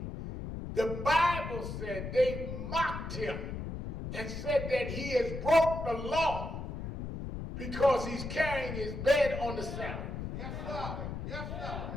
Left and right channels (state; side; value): noise; left; rumble, 6 dB below the sound